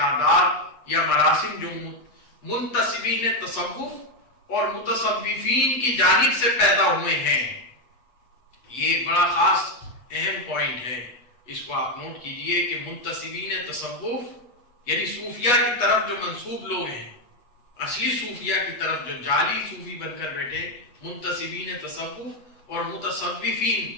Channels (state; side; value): late; right; 8.2 ms